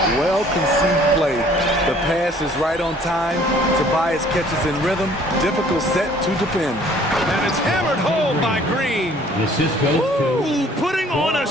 Well-conceived play. The pass is right on time. Tobias catches in rhythm. Difficult set to defend. And it's hammered home by Green. Ooh, putting on a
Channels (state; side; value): normal; both; correlation 0.56